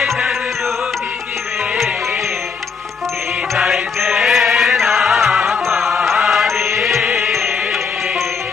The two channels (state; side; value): quieter; right; 5.6 dB